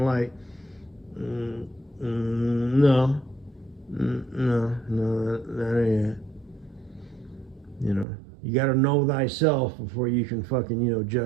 light. No, that ain't it. You got to know thyself before you can fucking,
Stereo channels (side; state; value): left; drops out; at 8.1 s